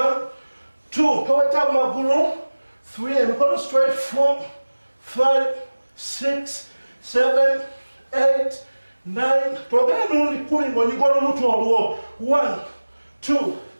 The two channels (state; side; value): inverted; both; correlation -1.00